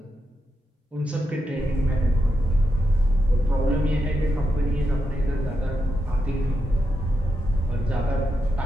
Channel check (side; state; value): both; normal; correlation 0.85